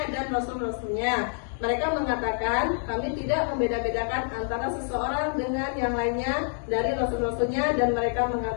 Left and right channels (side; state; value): right; silent; 60 dB below the other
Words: dan rasul-rasulnya. Mereka mengatakan kami tidak membeda-bedakan antara seseorang dengan yang lainnya dari rasul-rasulnya, dan mereka